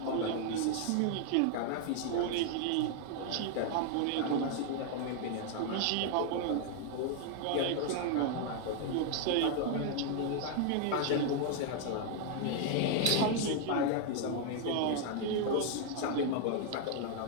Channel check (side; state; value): both; different; correlation 0.00